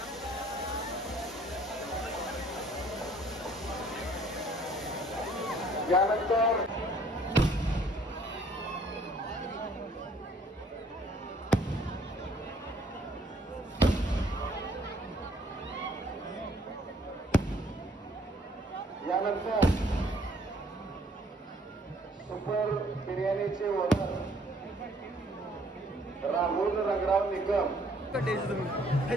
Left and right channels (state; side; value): normal; both; correlation 0.61